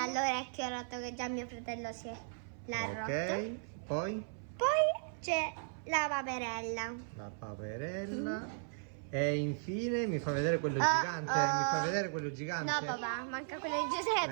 l'orecchio rotto, che già mio fratello l'ha Ok, rotto. poi? Poi c'è la paperella. La paperella. E infine mi fa vedere quello Oh, gigante. oh. Mi fa vedere quello gigante. No papà, manca quello di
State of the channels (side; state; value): left; silent; 53 dB below the other